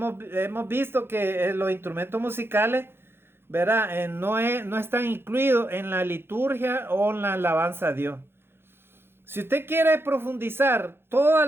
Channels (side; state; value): left; late; 0.11 ms